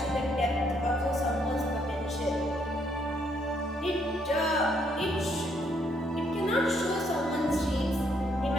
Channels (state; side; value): normal; both; correlation 0.71